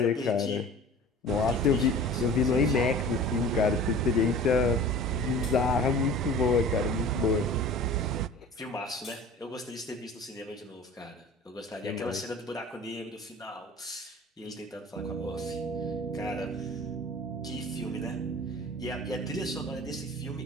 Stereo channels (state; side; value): normal; both; correlation 0.41